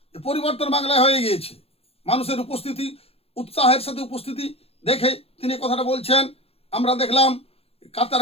যে পরিবর্তন বাংলায় হয়ে গিয়েছে। মানুষের উপস্থিতি, উৎসাহের সাথে উপস্থিতি দেখে তিনি কথাটা বলছেন। আমরা দেখলাম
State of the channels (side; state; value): right; late; 0.29 ms